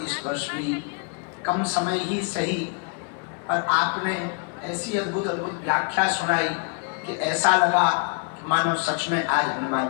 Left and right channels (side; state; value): right; quieter; 39.4 dB